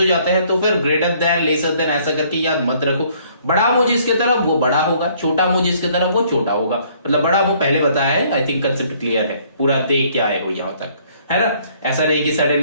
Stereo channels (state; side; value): inverted; both; correlation -0.62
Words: जाते हैं, तो फिर ग्रेटर देन लेसर देन ऐसा करके याद मत रखो। बड़ा मुंह जिसके तरफ वो बड़ा होगा, छोटा मुंह जिसके तरफ वो छोटा होगा, मतलब बड़ा मुंह पहले बताया है, आई थिंक कंसेप्ट क्लियर है, पूरा देख के आए हो यहाँ तक। है ना। ऐसा नहीं कि